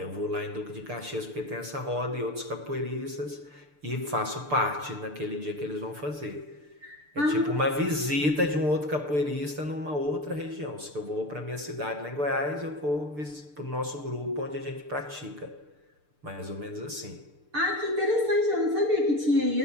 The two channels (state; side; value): late; left; 6.8 ms